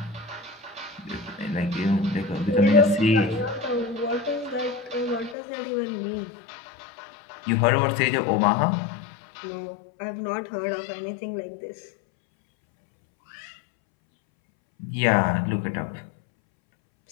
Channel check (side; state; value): right; drops out; at 5.4 s